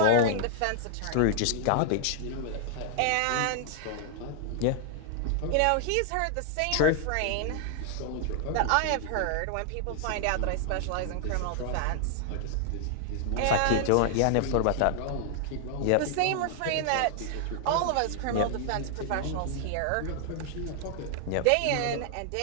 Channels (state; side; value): different; both; correlation -0.01